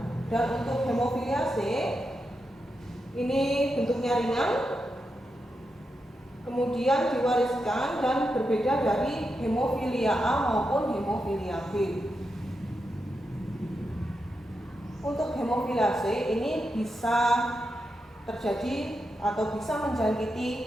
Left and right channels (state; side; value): normal; both; correlation 0.87